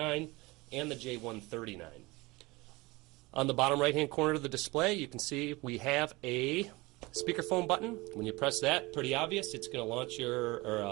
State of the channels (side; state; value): left; quieter; 22.8 dB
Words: and the J139. On the bottom right-hand corner of the display, you can see we have a speakerphone button. When you press that, pretty obvious, it's going to launch